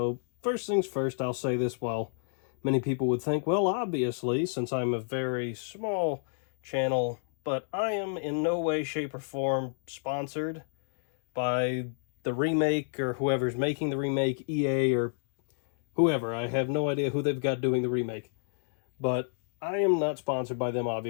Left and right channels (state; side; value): silent; right; digital silence